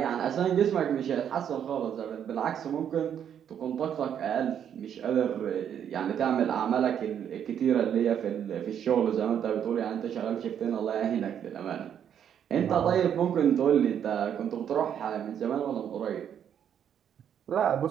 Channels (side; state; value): left; quieter; 9.0 dB